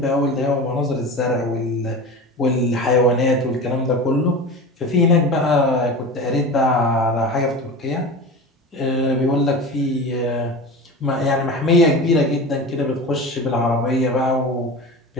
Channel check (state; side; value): normal; both; correlation 0.31